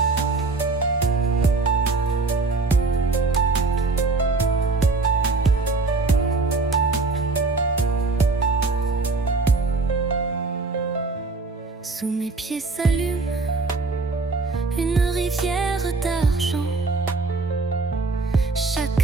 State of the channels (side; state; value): left; quieter; 3.8 dB